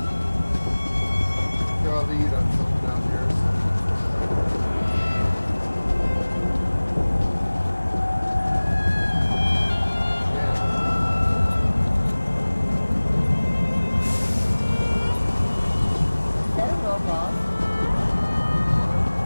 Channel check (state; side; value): inverted; both; correlation -1.00